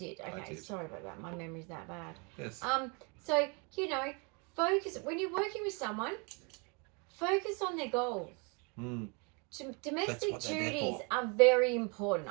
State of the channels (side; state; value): left; quieter; 32.7 dB